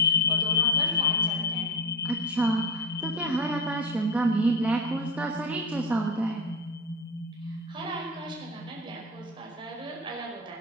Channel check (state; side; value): normal; both; correlation 0.22